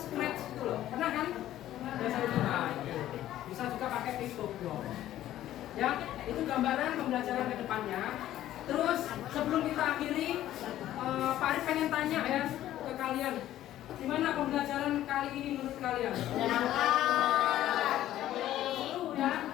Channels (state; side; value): quieter; right; 13.2 dB